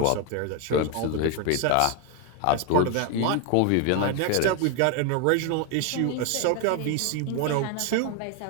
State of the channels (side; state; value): both; different; correlation 0.01